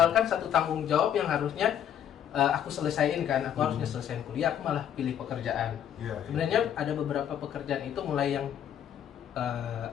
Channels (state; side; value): quieter; right; 9.7 dB